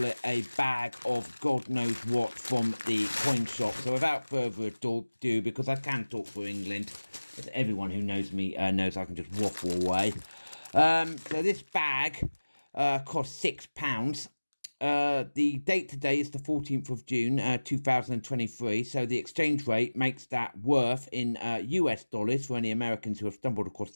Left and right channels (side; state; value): both; inverted; correlation -1.00